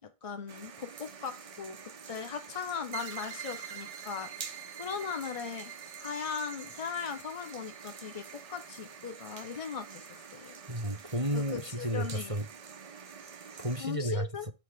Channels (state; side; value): late; left; 1.6 ms